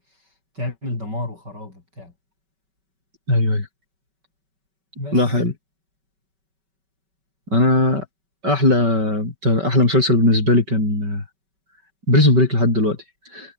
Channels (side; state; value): left; late; 5.2 ms